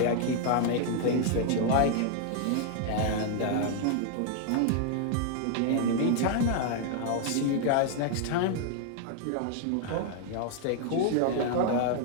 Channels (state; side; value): different; both; correlation 0.00